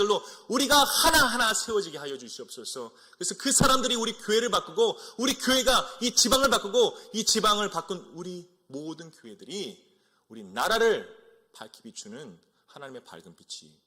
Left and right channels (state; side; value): identical; both; correlation 1.00